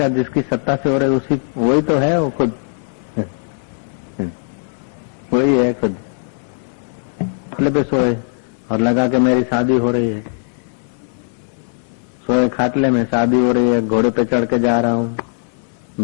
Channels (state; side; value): silent; right; 61 dB below the other